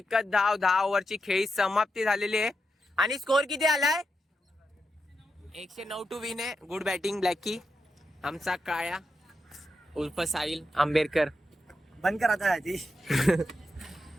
धाव. 10 ओव्हरची खेळी समाप्ती झालेली आहे. आणि स्कोर किती आलाय? 109 टू विन आहे. Good batting Blackie. आमचा काळ्या उर्फ साहिल आंबेडकर. बंद कर आता ती.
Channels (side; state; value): both; normal; correlation 0.86